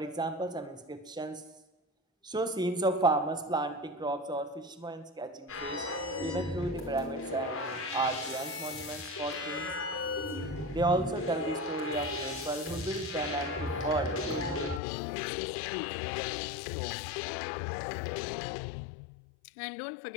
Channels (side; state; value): right; drops out; at 14.8 s